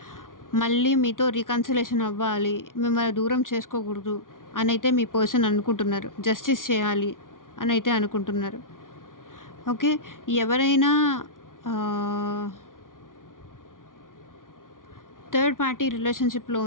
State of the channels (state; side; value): late; right; 0.89 ms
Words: మళ్ళీ మీతో రీకన్సిలేషన్ అవ్వాలి, మిమ్మల్ని దూరం చేసుకోకూడదు అనైతే మీ పర్సన్ అనుకుంటున్నారు. జస్టిస్ చేయాలి అనైతే అనుకుంటున్నారు. ఓకే. ఎవరైనా థర్డ్ పార్టీ రిలేషన్‌షిప్‌లో